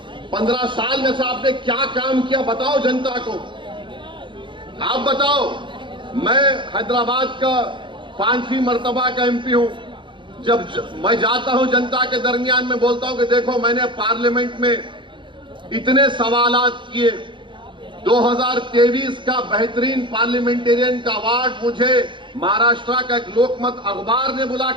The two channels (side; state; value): left; late; 0.23 ms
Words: 15 साल में से आपने क्या काम किया बताओ जनता को, आप बताओ। मैं हैदराबाद का 5वीं मर्तबा का एमपी हूं। जब मैं जाता हूं जनता के दरमियान में बोलता हूं कि देखो मैंने पार्लियामेंट में इतने सवालात किए, 2023 का बेहतरीन पार्लियामेंटेरियन का अवार्ड मुझे महाराष्ट्र का एक लोकमत अखबार ने